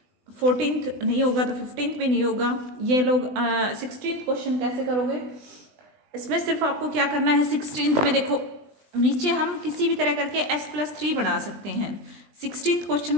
14th नहीं होगा तो 15th भी नहीं होगा। ये लोग 16th क्वेश्चन कैसे करोगे, इसमें सिर्फ आपको क्या करना है, 16th में देखो नीचे हम किसी भी तरह करके s+3 बना सकते हैं। 16th क्वेश्चन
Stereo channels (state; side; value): late; left; 20 ms